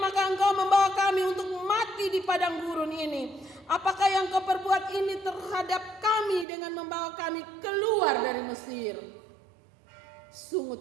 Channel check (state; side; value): drops out; left; at 6.5 s